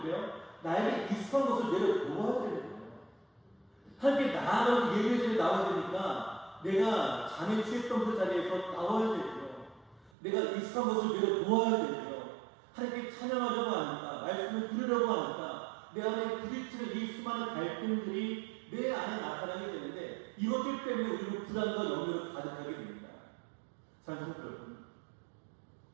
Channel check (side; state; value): left; drops out; at 10.1 s